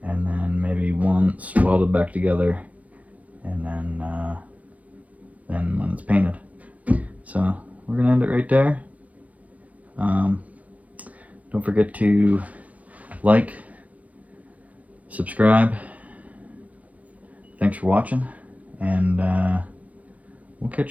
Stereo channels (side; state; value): left; late; 0.070 ms